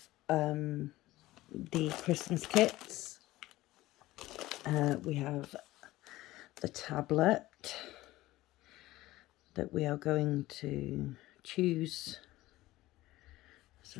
the Christmas kits. We have the tablet that we are going to choose.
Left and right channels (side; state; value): right; quieter; 17.3 dB